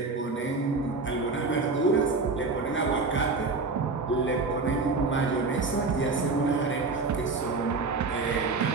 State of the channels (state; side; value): quieter; left; 3.9 dB